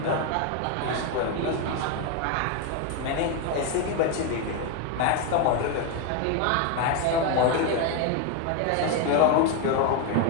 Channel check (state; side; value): different; both; correlation 0.01